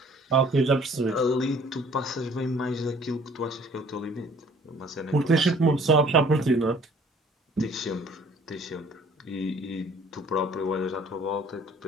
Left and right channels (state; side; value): normal; both; correlation 0.55